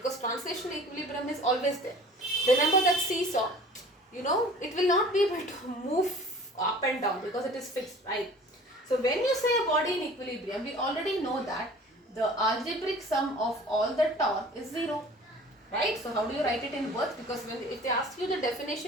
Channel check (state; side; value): normal; both; correlation 0.45